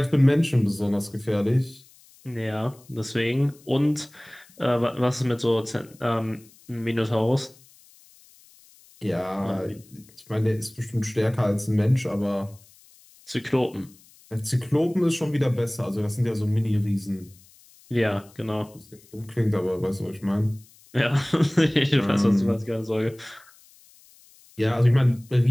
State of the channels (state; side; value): noise; left; hiss, 27 dB below the sound